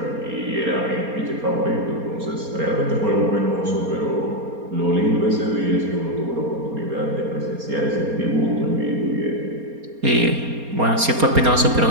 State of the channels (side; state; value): left; late; 4.3 ms